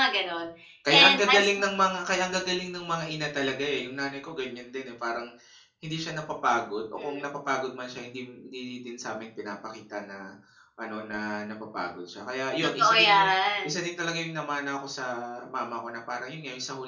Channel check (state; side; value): identical; both; correlation 1.00